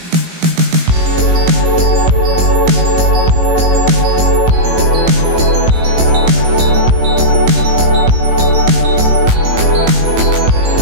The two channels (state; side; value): late; left; 18 ms